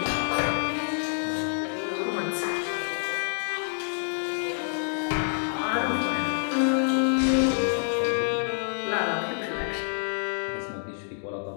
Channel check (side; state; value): right; silent; digital silence